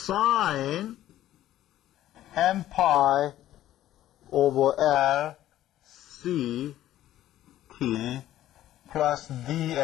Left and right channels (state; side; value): quieter; right; 13.3 dB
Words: m pi over L C T plus